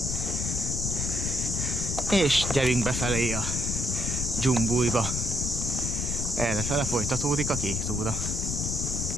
És gyerünk befelé a dzsumbújba. Errefele folytatódik a kék túra.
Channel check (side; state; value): left; noise; rumble, 2 dB below the sound